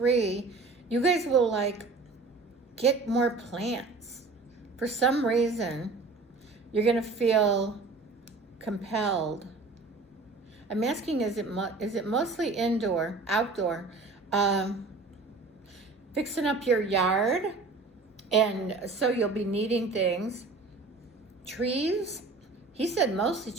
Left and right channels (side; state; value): left; quieter; 3.8 dB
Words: you guys will get more plants. For some reason, you're going to feel compelled. I'm asking, is it mostly indoor, outdoor? Fixing up your yard, and so you'll be needing things. Trees? He said mostly